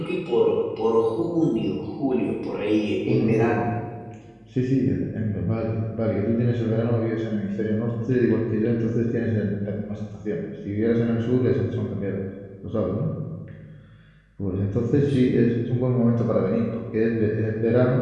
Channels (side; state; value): both; identical; correlation 1.00